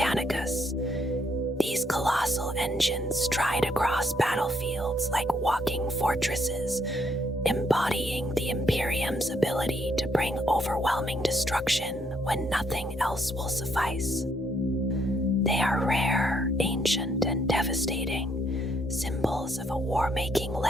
These colossal engines stride across battlefields like walking fortresses, embodying the Imperium's ability to bring overwhelming destruction when nothing else will suffice. They are rare, ancient, and devastating, symbols of a war-making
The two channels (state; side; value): normal; both; correlation 0.72